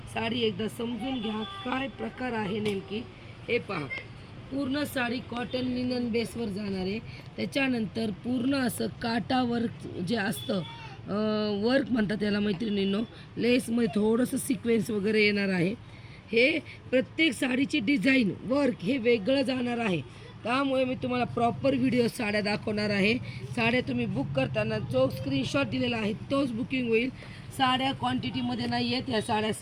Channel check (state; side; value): identical; both; correlation 1.00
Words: साडी एकदा समजून घ्या काय प्रकार आहे नेमकी. हे पहा, पूर्ण साडी कॉटन लिनन बेसवर जाणार आहे. त्याच्यानंतर पूर्ण असं काटा वर्क जे असतं, वर्क म्हणतात त्याला मैत्रिणींनो. लेसमध्ये थोडंसं सिक्वेन्स वगैरे येणार आहे. हे प्रत्येक साडीची डिझाईन वर्क हे वेगळं जाणार आहे. त्यामुळे मी तुम्हाला प्रॉपर व्हिडिओ साड्या दाखवणार आहे. साड्या तुम्ही बुक करताना जो स्क्रीनशॉट दिलेला आहे तोच बुकिंग होईल. साड्या क्वांटिटीमध्ये नाही आहेत. ह्या साड्या